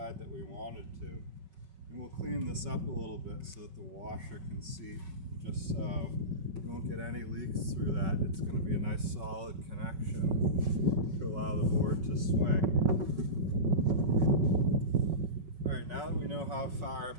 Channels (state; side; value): late; left; 5.3 ms